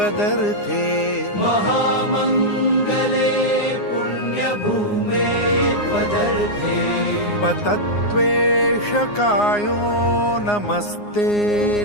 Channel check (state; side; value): late; right; 9.7 ms